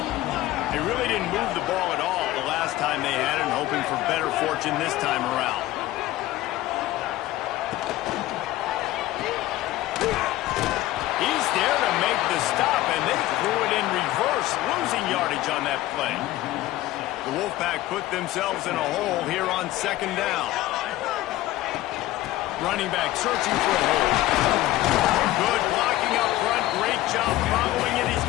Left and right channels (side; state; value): right; quieter; 16.0 dB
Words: They really didn't move the ball at all the last time they had it, hoping for better fortune this time around. He's there to make the stop, and they threw it in reverse, losing yardage on that play. The Wolfpack put themselves in a hole here on second down. Running back searching for a hole. Good blocking up front. Great job following it. He's